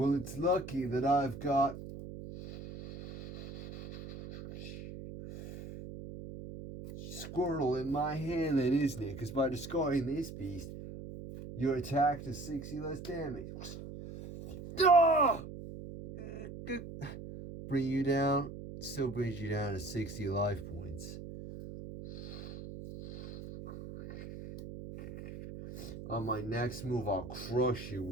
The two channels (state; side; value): noise; right; hum, 11 dB below the sound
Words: it's lucky that I've got Squirtle in my hand then, isn't it? Because by discarding this beast, your attack does 60 less damage. Bring you down. Still brings you down to 60 life points. On my next move, I'll crush you